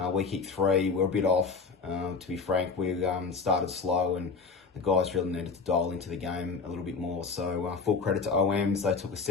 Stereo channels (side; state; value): right; quieter; 4.8 dB